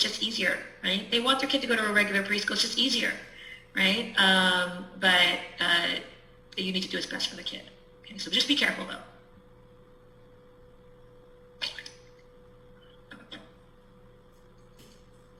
easier, right? They want their kid to go to a regular preschool. It's just easier, right? But you need to do what's best for the kid. Okay, so just be careful though.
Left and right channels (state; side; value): identical; both; correlation 1.00